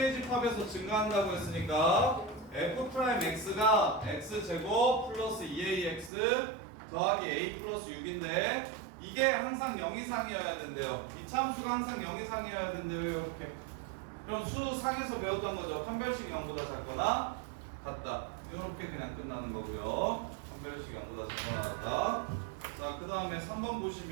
집합에서 증가한다고 했으니까 f'x가 x제곱 플러스 2ax 더하기 a 플러스 6인데 이게 항상 0 이상이어야 된대요. 이차함수가 항상 0 이상이어야 된대요. 이렇게. 그럼 수상에서 배웠던 거죠. 판별식 0보다 작거나 같다. 이렇게 그냥 끝나는 거고요. 판별식 0보다 작거나 같다. 자, 그 다음에 3번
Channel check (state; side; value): drops out; left; at 6.1 s